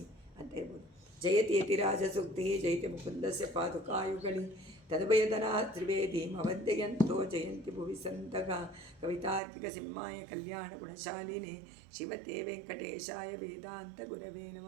ಅಂತ ಹೇಳ್ಬೋದು. ಜಯತಿ ಯತಿರಾಜ ಸೂಕ್ತಿ ಜಯತಿ ಮುಕುಂದಸ್ಯ ಪಾದುಕಾಯುಗಳಿ ತದ್ಭಯದನಾ ತ್ರಿವೇದೀಮವಂದ್ಯಂತೋ ಜಯಂತಿ ಭುವಿ ಸಂತಗ ಕವಿತಾರ್ಕಿಕ ಸಿಂಹಾಯ ಕಲ್ಯಾಣ ಗುಣಶಾಲಿನೇ ಶಿವತೆ ವೆಂಕಟೇಶಾಯ ವೇದಾಂತ ಗುರವೇ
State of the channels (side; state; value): left; drops out; at 9.4 s